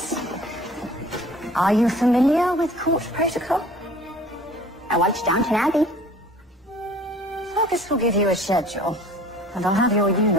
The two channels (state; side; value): normal; both; correlation 0.49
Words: Are you familiar with court protocol? I watched Downton Abbey. Fergus will give you a schedule, and I'll have your